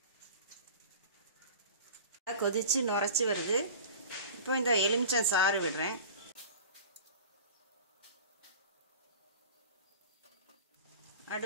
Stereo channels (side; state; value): both; inverted; correlation -0.37